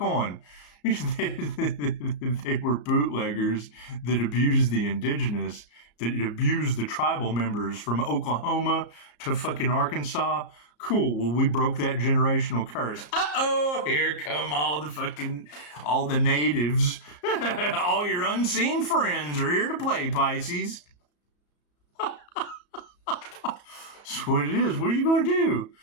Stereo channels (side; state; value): right; late; 34 ms